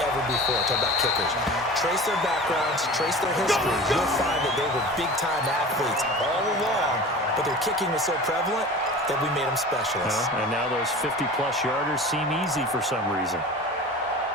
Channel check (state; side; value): normal; both; correlation 0.37